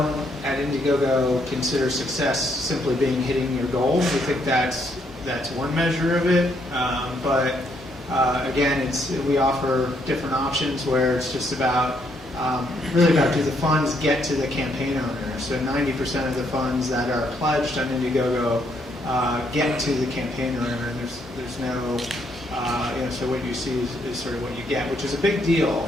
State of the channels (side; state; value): both; normal; correlation 0.73